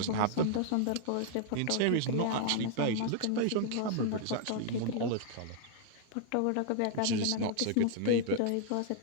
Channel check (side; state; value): both; different; correlation -0.01